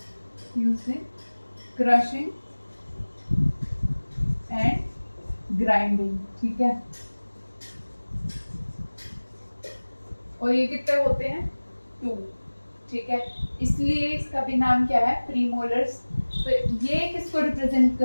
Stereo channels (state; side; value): inverted; both; correlation -1.00